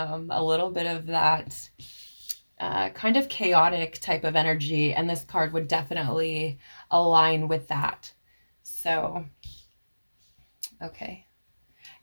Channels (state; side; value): inverted; both; correlation -1.00